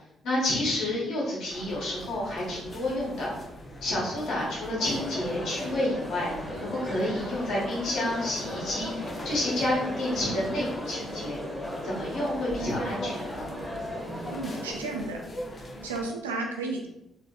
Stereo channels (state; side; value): normal; both; correlation 0.71